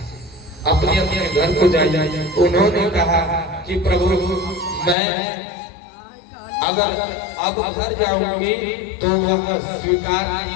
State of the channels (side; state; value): right; drops out; at 5.0 s